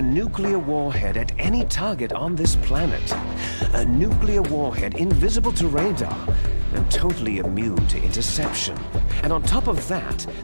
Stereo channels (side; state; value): both; inverted; correlation -1.00